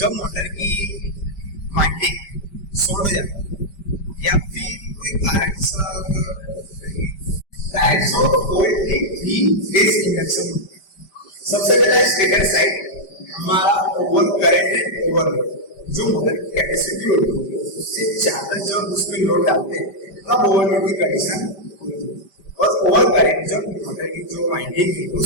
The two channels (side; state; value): right; late; 5.1 ms